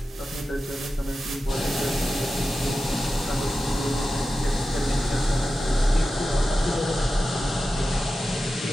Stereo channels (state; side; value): normal; both; correlation 0.92